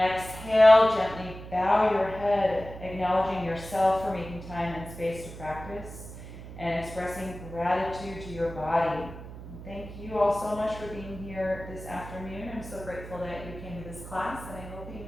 gently bow your head, acknowledging yourself for making time and space to practice and expressing gratitude to your body. Thank you all so much for being here this afternoon. I'm so grateful that you came to this class, and I hope you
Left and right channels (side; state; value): right; noise; hum, 13 dB below the sound